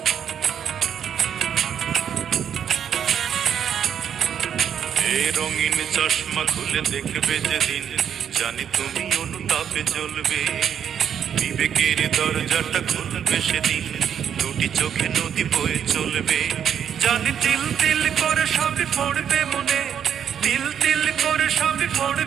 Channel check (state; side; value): quieter; left; 8.6 dB